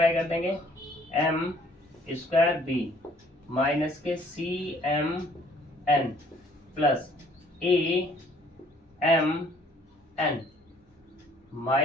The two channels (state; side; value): normal; both; correlation 0.60